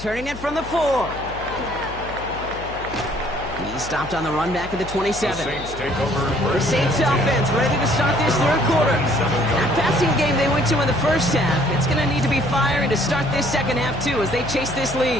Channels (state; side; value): noise; left; hum, 13 dB below the sound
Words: it from the 4. He's stopped on the run back at the 27. The Saints take over. The Saints offense ready to start this 3rd quarter. That passing game they went to in the first half, it's going to need to be firing to start this 2nd half too as they chase this